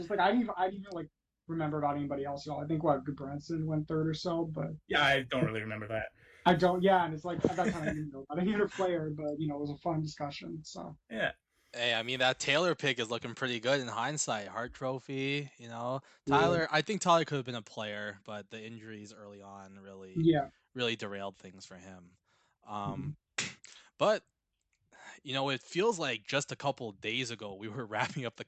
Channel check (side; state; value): both; identical; correlation 1.00